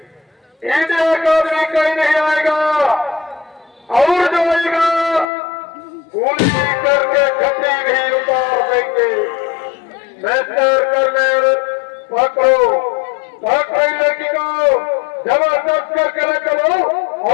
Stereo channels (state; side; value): drops out; right; at 5.2 s